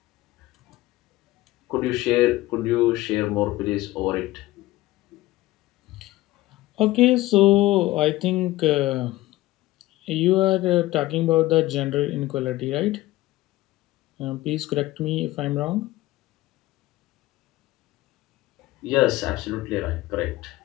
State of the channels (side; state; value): right; quieter; 17.7 dB